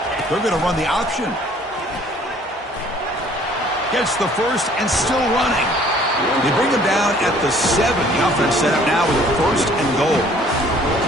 They're going to run the option. Gets the first and still running. They bring him down at the 7. The offense set up now with a first and goal.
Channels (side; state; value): both; normal; correlation 0.56